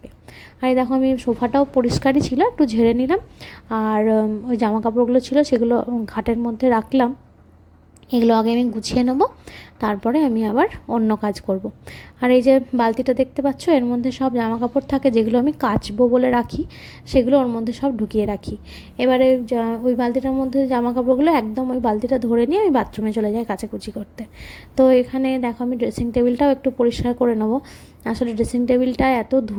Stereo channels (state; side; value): identical; both; correlation 1.00